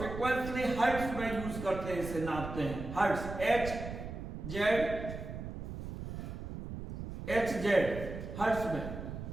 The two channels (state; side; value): noise; right; rumble, 8 dB below the sound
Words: हर्ट्ज में यूज करते हैं, इसे नापते हैं हर्ट्ज, HZ हर्ट्ज में।